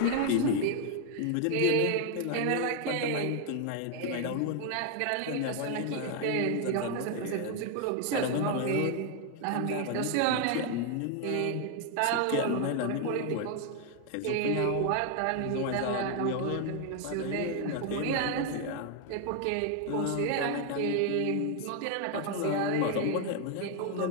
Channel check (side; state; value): both; different; correlation 0.00